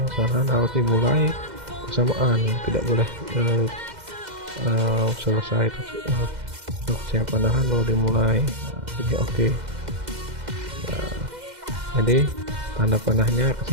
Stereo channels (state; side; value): late; left; 2.1 ms